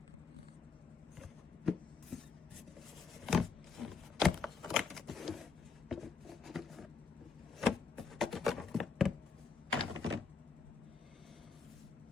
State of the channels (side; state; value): right; quieter; 5.2 dB